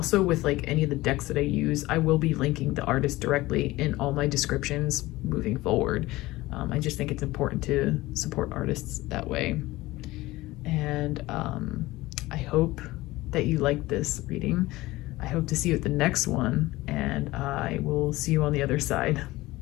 with like any of the decks that I use, I will be linking the artist directly in all my descriptions moving forward. I just think it's important to support artists that way. And I hope that you liked this reading. I hope to see you at the next one, and I will see you on the other side.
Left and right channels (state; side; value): quieter; right; 18.8 dB